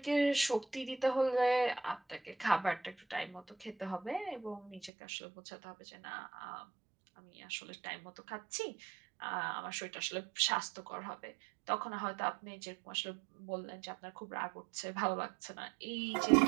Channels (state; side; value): drops out; left; at 4.9 s